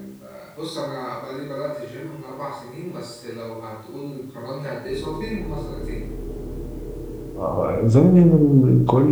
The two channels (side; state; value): both; identical; correlation 1.00